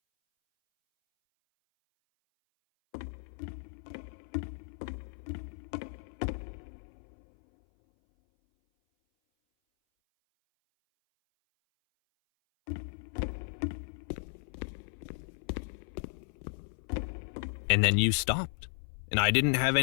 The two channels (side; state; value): right; silent; 55 dB below the other